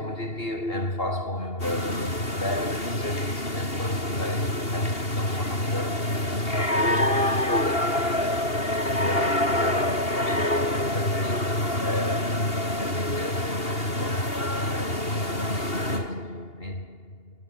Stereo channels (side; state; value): right; late; 2.8 ms